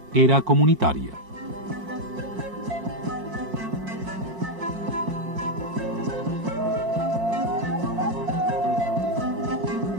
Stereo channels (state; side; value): late; left; 4.5 ms